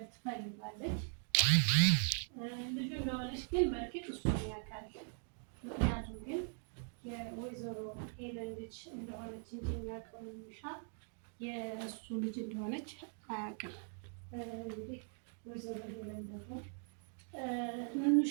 ትፈልጋለች። ልጁ እንደሆነች ግን በእርግጥ እሱ ያውቃል። ምክንያቱም ግን የወይዘሮ ሄለን ልጅ እንደሆነች እንጂ የሚያውቀው ኑሻ የእሱ ልጅ እንደሆነች አያውቅም። እንግዲህ ወይዘሮ ሄለን ደግሞ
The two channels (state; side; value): silent; left; 51 dB below the other